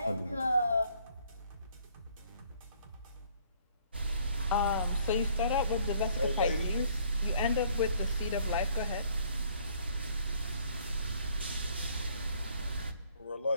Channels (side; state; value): both; inverted; correlation -0.62